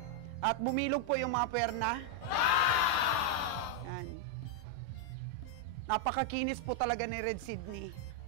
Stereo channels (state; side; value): late; right; 6.7 ms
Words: At bumilog po yung mga puwerna. Yan. Napakakinis po talaga ni Red Sydney.